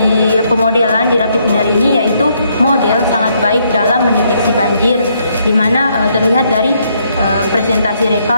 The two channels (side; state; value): both; inverted; correlation -0.72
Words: pemodelan di RapidMiner ini yaitu model sangat baik dalam mendeteksi banjir, di mana terlihat dari presentasi